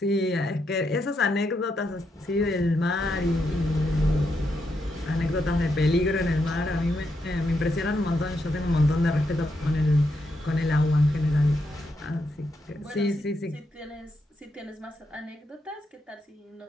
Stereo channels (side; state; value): both; normal; correlation 0.81